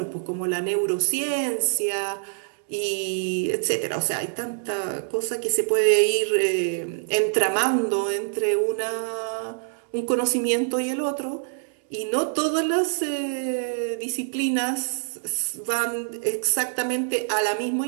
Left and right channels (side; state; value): left; silent; 62 dB below the other